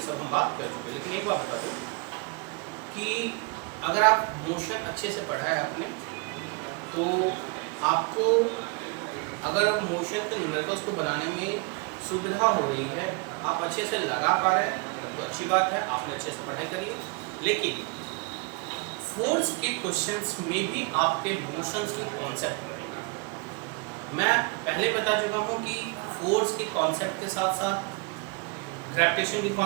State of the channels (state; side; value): quieter; left; 30.0 dB